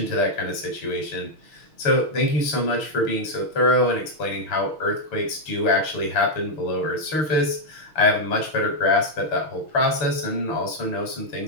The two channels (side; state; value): right; late; 6.4 ms